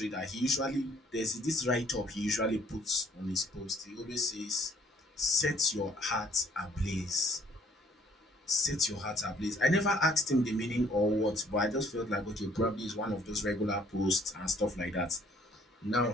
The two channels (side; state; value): both; normal; correlation 0.61